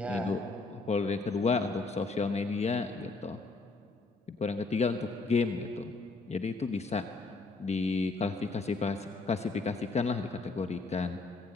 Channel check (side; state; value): right; quieter; 3.7 dB